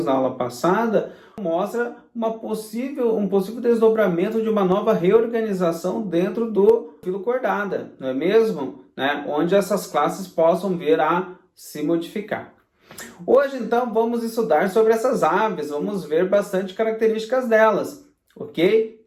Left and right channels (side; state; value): both; identical; correlation 1.00